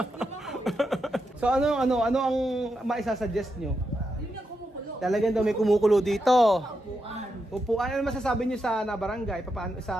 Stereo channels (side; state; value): both; normal; correlation 0.85